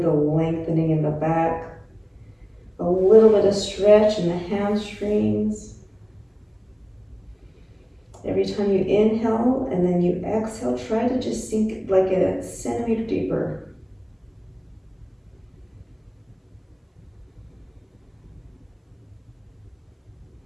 the lengthening in the back. A little bit of stretch in the hamstrings. Every time you inhale and then you exhale, try to just sink like a centimeter deeper.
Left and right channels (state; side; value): identical; both; correlation 1.00